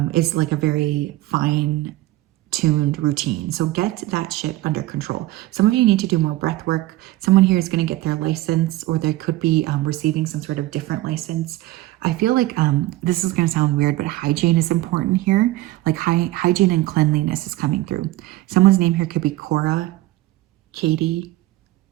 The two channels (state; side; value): quieter; left; 17.2 dB